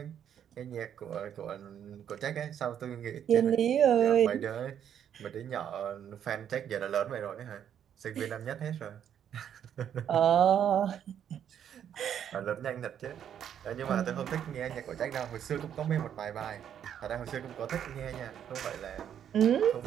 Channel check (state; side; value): quieter; left; 9.3 dB